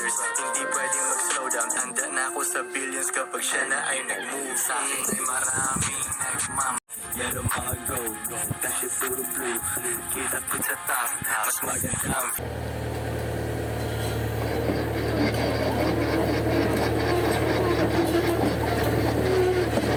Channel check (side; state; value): both; identical; correlation 1.00